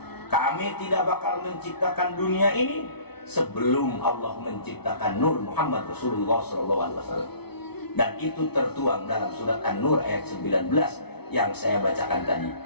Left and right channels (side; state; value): right; late; 0.97 ms